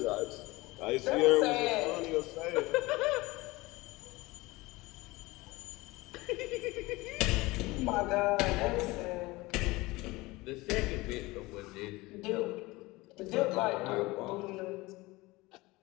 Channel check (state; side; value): quieter; right; 21.4 dB